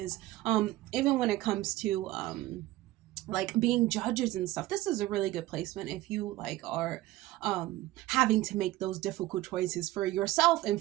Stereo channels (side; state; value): left; quieter; 17.0 dB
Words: Even when it comes to like being judges and stuff. This is a really good placement if you like are having to make those difficult choices for yourself,